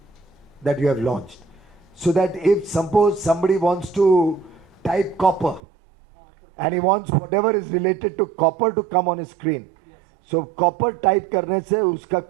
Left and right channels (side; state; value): left; drops out; at 5.6 s